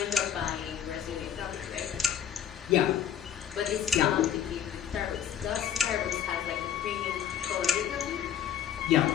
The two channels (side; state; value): right; quieter; 9.4 dB